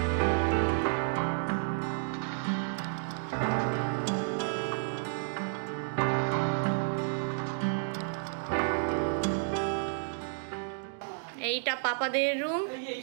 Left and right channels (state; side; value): silent; left; digital silence